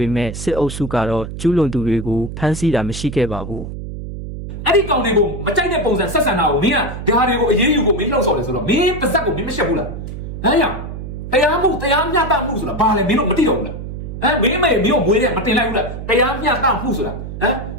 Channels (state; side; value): noise; right; hum, 8 dB below the sound